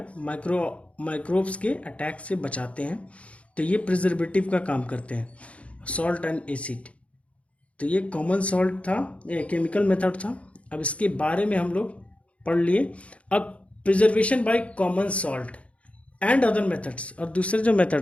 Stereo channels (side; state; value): right; late; 0.063 ms